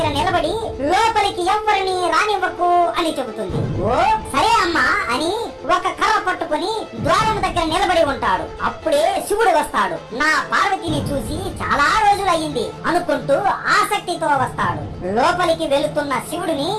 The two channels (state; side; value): identical; both; correlation 1.00